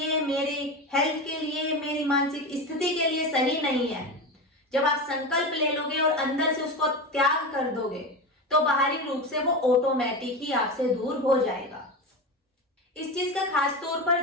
मेरे हेल्थ के लिए, मेरी मानसिक स्थिति के लिए सही नहीं है, जब आप संकल्प ले लोगे और अंदर से उसको त्याग कर दोगे तो बाहरी रूप से वो ऑटोमेटिक ही आपसे दूर हो जाएगा। इस चीज का खास तौर पर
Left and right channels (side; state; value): both; normal; correlation 0.22